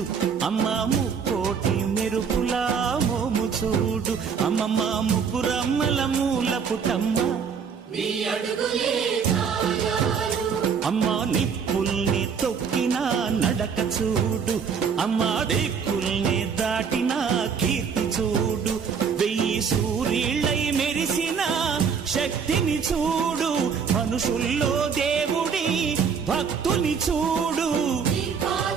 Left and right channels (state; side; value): quieter; left; 6.4 dB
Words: అమ్మా ముక్కోటి మెరుపులా మోము చూడు, అమ్మమ్మ ముగ్గురమ్మల మూల పుటమ్మ అమ్మా నిప్పుల్ని తొక్కిన నడక చూడు, అమ్మా దిక్కుల్ని దాటిన కీర్తి చూడు, 1000 సూర్యుళ్ళై మెరిసిన శక్తిని చూడు, మనుషుల్లో దేవుడి భక్తుని చూడు.